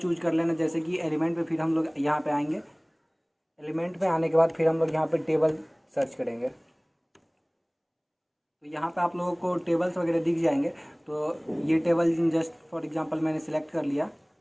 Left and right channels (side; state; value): both; identical; correlation 1.00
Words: कर लेना, जैसे कि एलिमेंट पे फिर हम लोग यहाँ पे आएंगे। एलिमेंट पे आने के बाद फिर हम लोग यहाँ पे टेबल सर्च करेंगे तो यहाँ पे आप लोगों को टेबल्स वगैरह दिख जाएंगे। तो ये टेबल जस्ट फॉर एग्जांपल मैंने सेलेक्ट कर लिया।